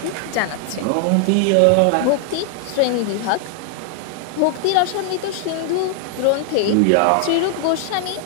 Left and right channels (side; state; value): both; different; correlation 0.00